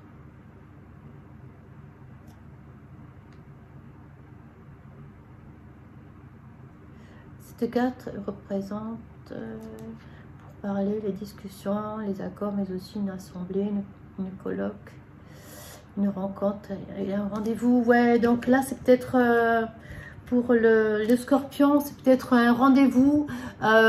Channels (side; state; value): both; identical; correlation 1.00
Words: cette carte représente pour parler les discussions, les accords, mais aussi une assemblée, une colloque, une rencontre, et un rendez-vous. Ouais, donc là c'est peut-être pour le Scorpion, c'est peut-être un rendez-vous